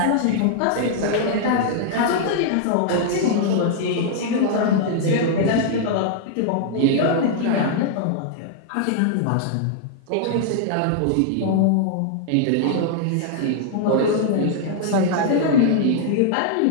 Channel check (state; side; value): different; both; correlation -0.01